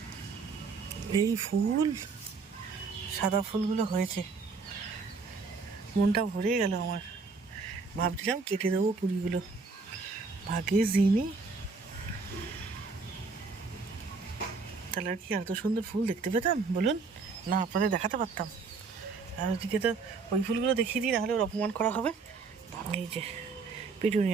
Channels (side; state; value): left; quieter; 4.6 dB